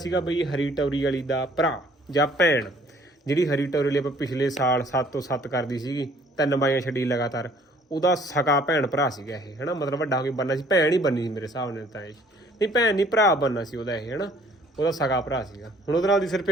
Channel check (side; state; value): both; normal; correlation 0.58